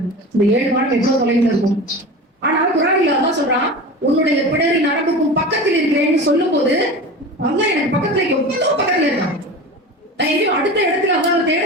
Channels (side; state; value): both; normal; correlation 0.31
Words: இந்த 7 வானம் எவ்வளவு தொலைவில் இருக்கும். ஆனா குர்ஆனில் அல்லாஹ் சொல்றான், உன்னுடைய பிடரி நரம்புக்கும் பக்கத்தில் இருக்கிறேன்னு சொல்லும் போது அல்லாஹ் எனக்கு பக்கத்துல எவ்வளவு பக்கத்துல இருக்கான். நான் எங்கேயும் அடுத்த இடத்துல அல்லாஹ் தேட